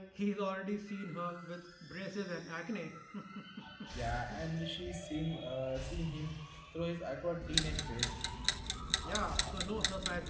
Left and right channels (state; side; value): identical; both; correlation 1.00